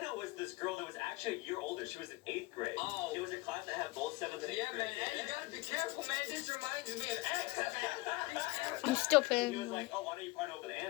was this girl that was actually a year older. She was in 8th grade. Oh. It was a class that had both 7th and 8th grade. Yeah, man. Hey, you gotta be careful, man. This reminds me of X, man. I'm still He was playing. like, oh, why don't you partner up with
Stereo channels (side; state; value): right; quieter; 21.9 dB